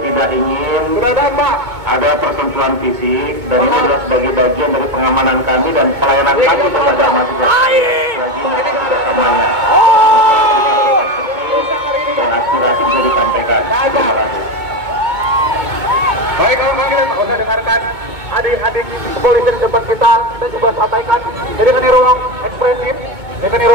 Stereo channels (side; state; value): left; late; 2.2 ms